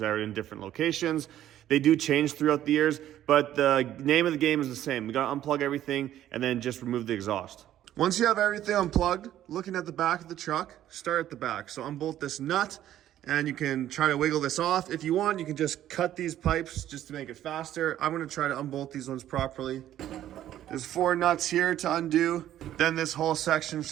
are in different locations. They do change throughout the years, but the name of the game is the same. We gotta unplug everything and then just remove the exhaust. Once you have everything unplugged, looking at the back of the truck, start at the back. So unbolt this nut, and you can try to wiggle this off. If you want, you can just cut these pipes just to make it faster. I'm gonna try to unbolt these ones properly. There's 4 nuts here to undo. Then this whole section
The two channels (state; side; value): quieter; left; 12.2 dB